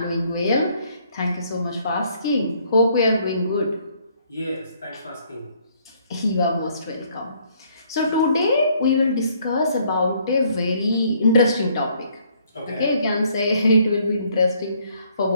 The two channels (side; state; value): both; inverted; correlation -0.65